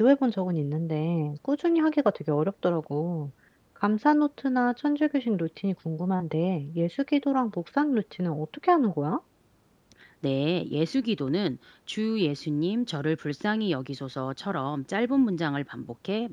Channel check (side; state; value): both; identical; correlation 1.00